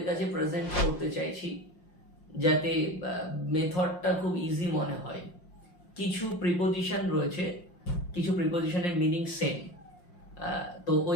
কাছে প্রেজেন্ট করতে চাইছি যাতে মেথডটা খুব ইজি মনে হয়। কিছু প্রিপোজিশন রয়েছে, কিছু প্রিপোজিশনের মিনিং সেম, তো ওই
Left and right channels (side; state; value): right; late; 5.6 ms